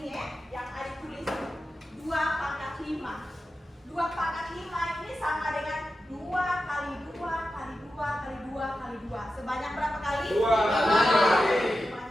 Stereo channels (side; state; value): both; normal; correlation 0.91